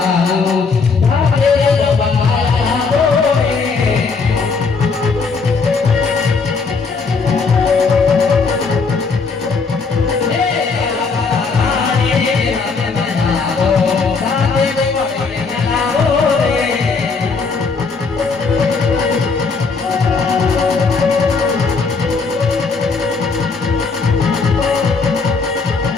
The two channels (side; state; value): right; quieter; 4.7 dB